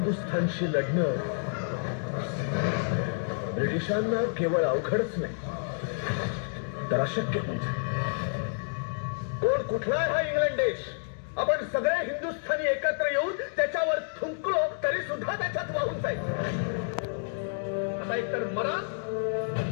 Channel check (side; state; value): right; silent; digital silence